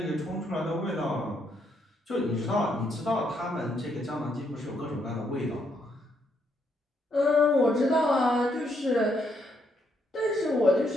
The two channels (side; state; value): both; normal; correlation 0.75